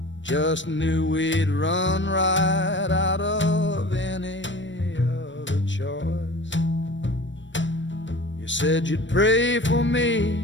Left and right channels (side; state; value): right; late; 0.54 ms